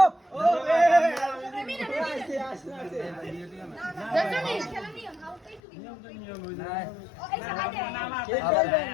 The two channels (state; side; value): drops out; right; at 5.6 s